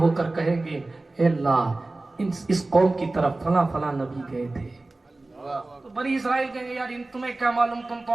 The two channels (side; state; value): left; quieter; 3.0 dB